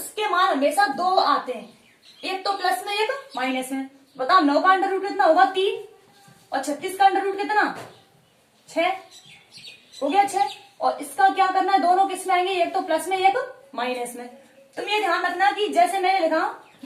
मान हमेशा 2 आते हैं, एक तो प्लस में एक माइनस में। बताओ 9 का अंडर रूट कितना होगा 3 और 36 का अंडर रूट कितना 6 हो गया 6। और इसका क्या करना है, दोनों किस में आएंगे, एक तो प्लस में एक माइनस में। तुम ये ध्यान रखना कि जैसे मैंने लिखा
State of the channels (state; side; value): identical; both; correlation 1.00